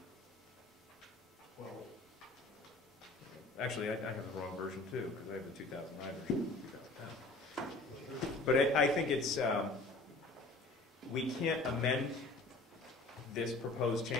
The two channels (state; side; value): quieter; right; 3.1 dB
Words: Well, actually, I have the wrong version too, because I have the 2009 version. 2010. But I think it's, we can't amend this proposed